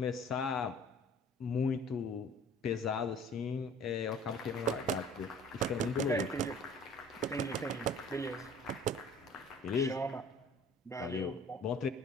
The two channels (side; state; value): both; normal; correlation 0.49